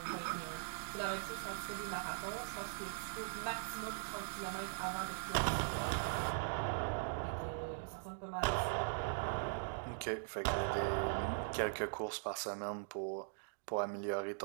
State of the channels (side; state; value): left; silent; digital silence